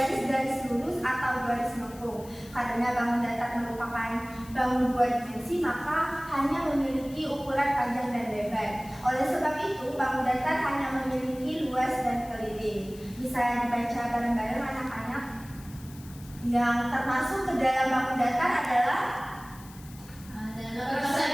lurus atau garis lengkung. Karena bangun datar merupakan bangun dua dimensi, maka hanya memiliki ukuran panjang dan lebar. Oleh sebab itu, bangun datar hanya memiliki luas dan keliling. Bisa dibaca bareng-bareng anak-anak. Yang termasuk ke dalam bangun datar adalah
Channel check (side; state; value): left; noise; hiss, 21 dB below the sound